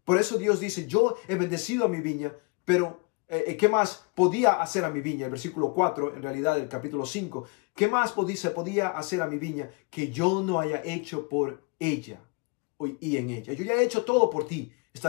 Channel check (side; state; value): right; quieter; 31.3 dB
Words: Por eso Dios dice, yo he bendecido a mi viña, pero ¿qué más podía hacer a mi viña? El versículo 4, en realidad del capítulo 5, ¿qué más se podía hacer a mi viña que yo no haya hecho por ella y en ella? Yo ya he hecho todo por ti,